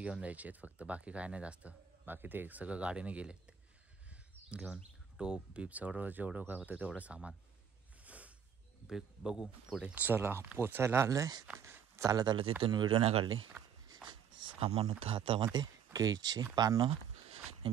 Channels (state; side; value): quieter; left; 7.8 dB